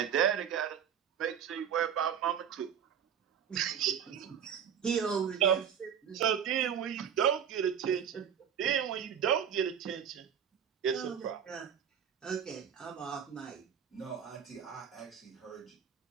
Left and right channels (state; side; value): quieter; left; 8.3 dB